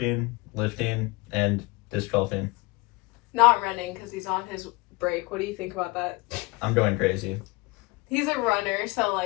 lifting, and disc golfing. Not running because he's on his break. What do you think about that? I'm going crazy. He's a runner, so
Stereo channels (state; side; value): quieter; right; 24.1 dB